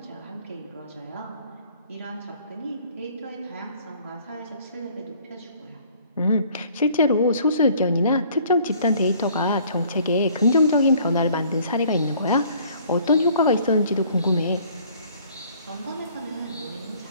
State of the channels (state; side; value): inverted; both; correlation -0.57